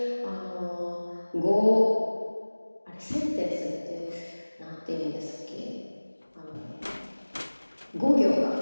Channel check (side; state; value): both; inverted; correlation -1.00